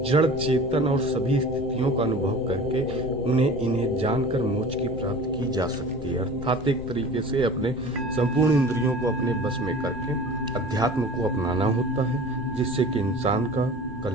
जड़ चेतन और सभी स्थितियों का अनुभव करके इन्हें जानकर मोक्ष की प्राप्ति की जा सकती है। अर्थात एक तरीके से अपने संपूर्ण इंद्रियों को अपने बस में करके अध्यात्म को अपनाना होता है, जिससे कि इंसान का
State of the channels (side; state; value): left; noise; rumble, 13 dB below the sound